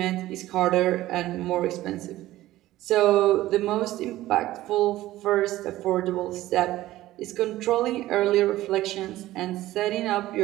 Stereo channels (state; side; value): quieter; left; 15.7 dB